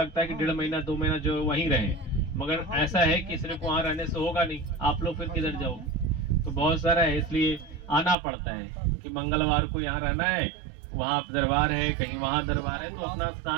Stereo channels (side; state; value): left; drops out; at 8.2 s